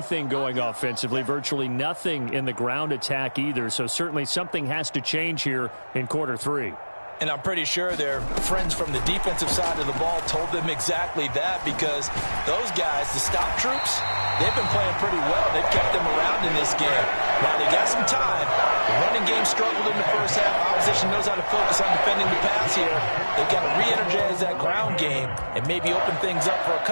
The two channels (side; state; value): both; inverted; correlation -1.00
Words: going offensively, virtually nothing in the ground attack either. So certainly something has to change here in quarter 3. And I'm pretty sure their friends from the defensive side of the ball told them exactly that, because those guys, the stop troops, they've been playing pretty well. They've kept them around in this game. Now, they got some time. The running game struggled in the first half. Opposition knows how to focus on defending the pass here. They've got to re-energize that ground game and maybe open things up for a